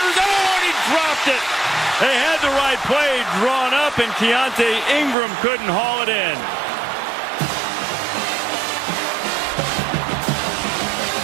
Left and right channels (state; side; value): drops out; left; at 5.2 s